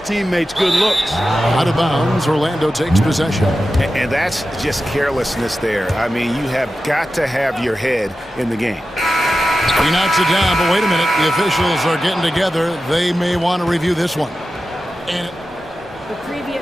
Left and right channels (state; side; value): normal; both; correlation 0.93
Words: teammates good looks. Out of bounds, Orlando takes possession. And that's just carelessness there. I mean, you have got to have your head in the game. He knocks it down, but wait a minute. The officials are getting together. They may want to review this one. And the